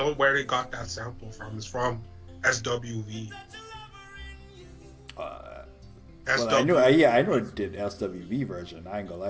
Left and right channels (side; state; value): both; identical; correlation 1.00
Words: where they got that sample from. It's from SWV. Well, I know it did SWV version. I ain't gonna